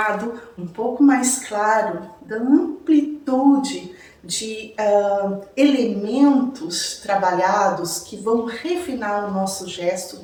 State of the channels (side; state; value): both; identical; correlation 1.00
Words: um pouco mais claro da amplitude de elementos trabalhados que vão refinar o nosso gesto